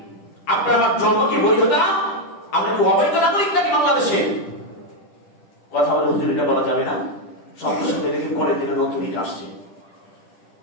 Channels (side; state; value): right; late; 10 ms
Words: আপনার আমার জন্ম কি বৈধতা? আমরা কি অবৈধ নাগরিক নাকি বাংলাদেশে? কথা বলে হুজুর এটা বলা যাবে না। সঙ্গে সঙ্গে দেখি পরের দিনে নতুন ইট আসছে,